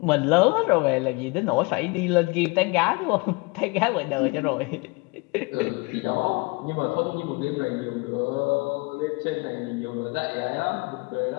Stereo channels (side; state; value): right; quieter; 27.6 dB